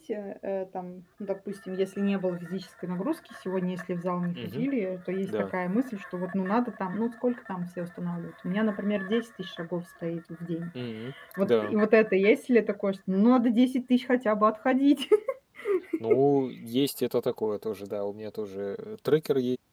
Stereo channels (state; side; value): identical; both; correlation 1.00